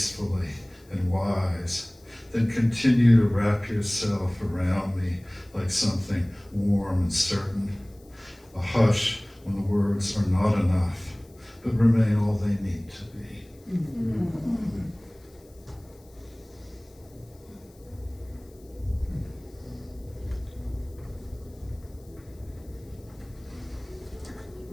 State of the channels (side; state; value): left; noise; hiss, 29 dB below the sound